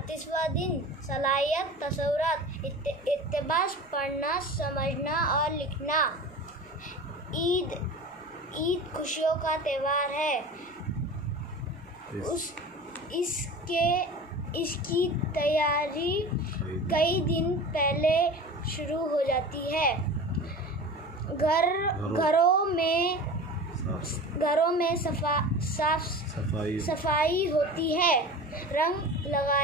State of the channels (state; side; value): normal; both; correlation 0.35